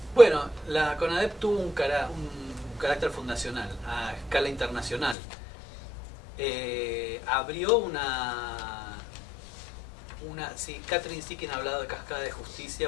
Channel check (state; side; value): drops out; right; at 5.2 s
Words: Bueno, la CONADEP tuvo un carácter fundacional a escala internacional. Abrió sí, Catherine Sikin ha hablado de cascada de